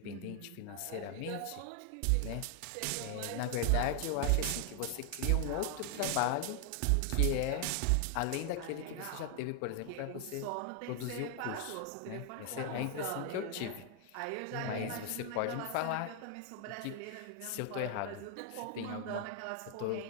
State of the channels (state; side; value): different; both; correlation 0.00